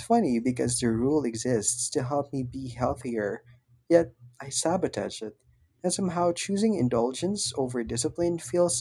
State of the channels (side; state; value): both; identical; correlation 1.00